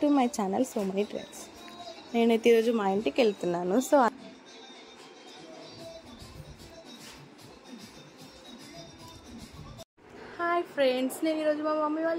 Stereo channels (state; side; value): identical; both; correlation 1.00